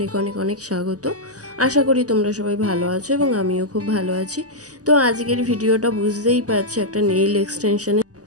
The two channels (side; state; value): left; late; 0.67 ms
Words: অনেক অনেক স্বাগত। আশা করি তোমরা সবাই ভালো আছো এবং আমিও খুব ভালো আছি। তো আজকের ভিডিওটা বুঝতেই পারছি একটা নেইল এক্সটেনশনের।